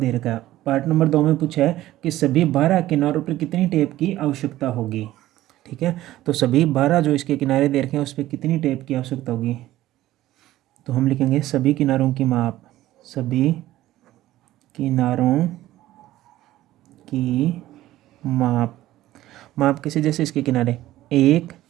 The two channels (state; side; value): quieter; left; 15.0 dB